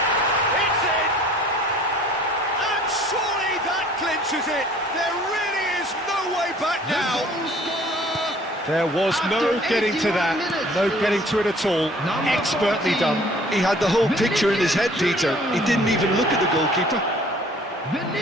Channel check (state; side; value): normal; both; correlation 0.53